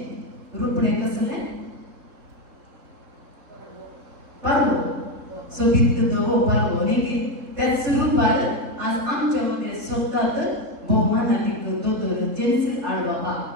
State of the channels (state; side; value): late; left; 3.4 ms